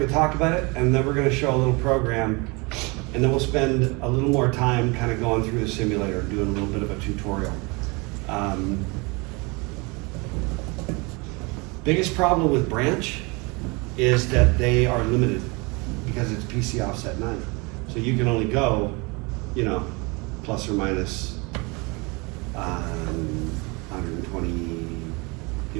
talk about it, and then we're gonna show a little program, and then we'll spend a little more time kind of going through the simulator, doing a little bit of a tutorial. Biggest problem with branch is that they are limited because it's PC offset 9. So you can only go, plus or minus 120,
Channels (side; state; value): left; quieter; 27.9 dB